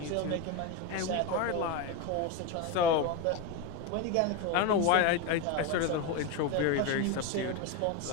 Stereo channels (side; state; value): both; different; correlation 0.04